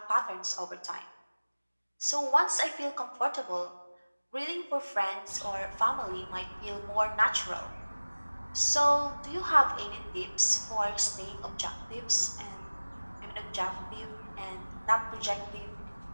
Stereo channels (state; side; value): inverted; both; correlation -1.00